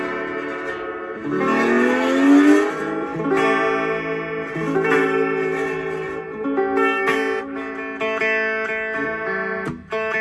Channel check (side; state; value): both; identical; correlation 1.00